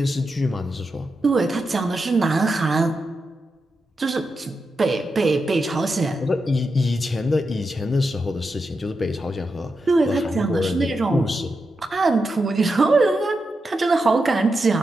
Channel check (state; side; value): normal; both; correlation 0.87